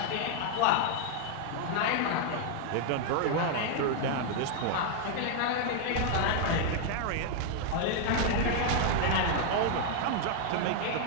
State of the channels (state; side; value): different; both; correlation 0.00